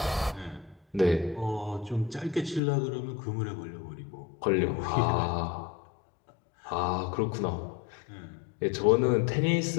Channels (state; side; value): drops out; right; at 2.6 s